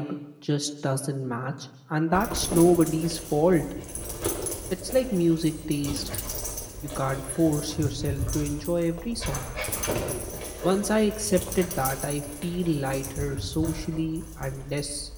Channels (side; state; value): both; identical; correlation 1.00